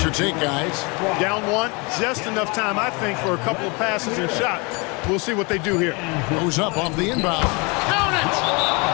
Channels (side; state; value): right; quieter; 29.2 dB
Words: your take, guys? Down 1, just enough time, I think, for a couple of passes and shots. We'll see what they do here. Goes up off the inbound. Count